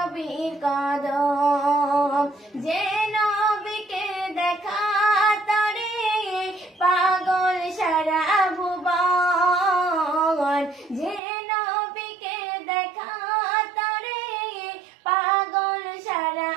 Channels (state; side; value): drops out; left; at 11.2 s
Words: কদম যে নবীকে দেখা তরে পাগল সারা ভুবন যে নবীকে দেখা তরে পাগল সারা